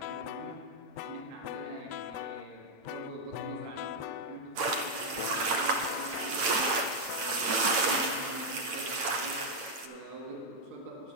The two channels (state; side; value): late; left; 8.8 ms